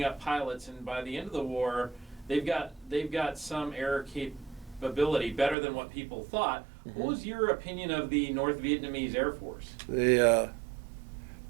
up pilots, and by the end of the war, they've got some air capability better than what people thought. Mm-hmm. What was your opinion of the North Vietnamese Air Force? The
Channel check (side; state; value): left; drops out; at 5.6 s